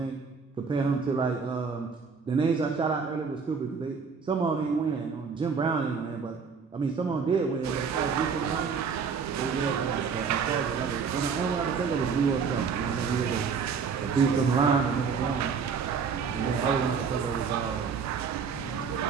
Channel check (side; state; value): left; quieter; 5.8 dB